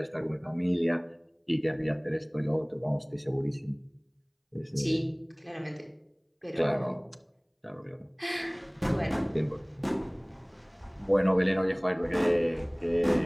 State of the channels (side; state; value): both; identical; correlation 1.00